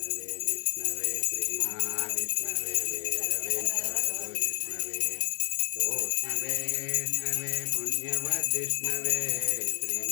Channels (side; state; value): right; quieter; 34.1 dB